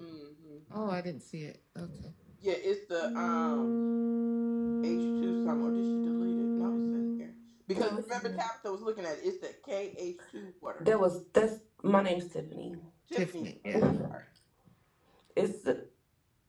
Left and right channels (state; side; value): identical; both; correlation 1.00